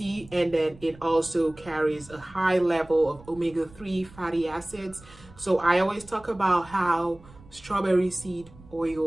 and then it also carries a high level of omega-3 fatty acids. So I always talk about how strawberry seed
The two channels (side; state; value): right; noise; rumble, 22 dB below the sound